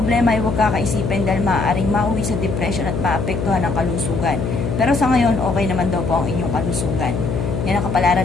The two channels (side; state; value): left; noise; hum, 2 dB below the sound